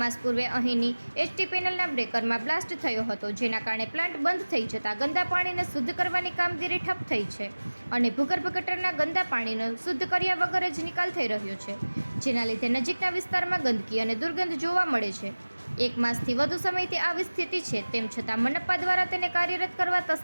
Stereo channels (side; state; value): both; inverted; correlation -1.00